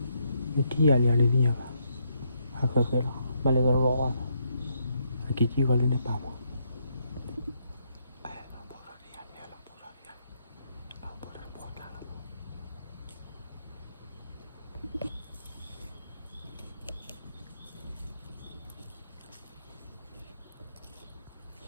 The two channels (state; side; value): inverted; both; correlation -0.77